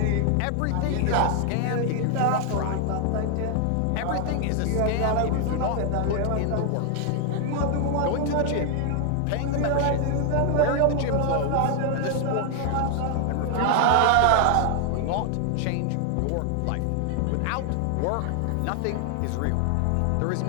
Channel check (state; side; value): different; both; correlation 0.00